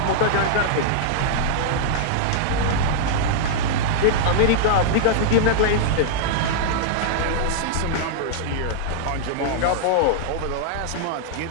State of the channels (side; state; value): both; different; correlation -0.01